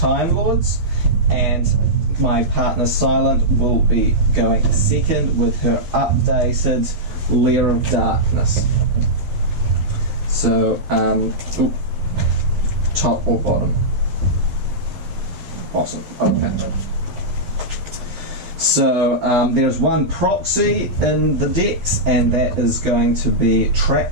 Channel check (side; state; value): left; late; 12 ms